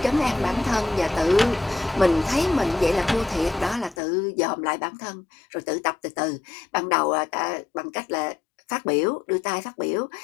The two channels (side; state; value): right; drops out; at 4.0 s